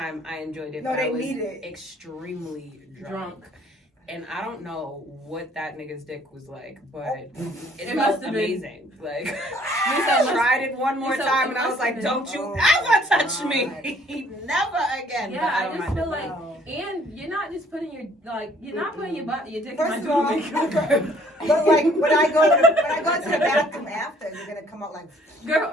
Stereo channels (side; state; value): both; normal; correlation 0.60